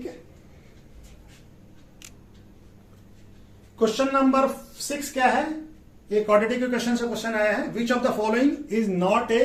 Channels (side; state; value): both; identical; correlation 1.00